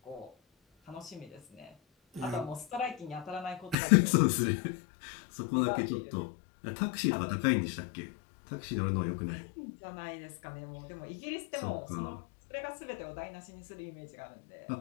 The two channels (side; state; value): right; drops out; at 3.8 s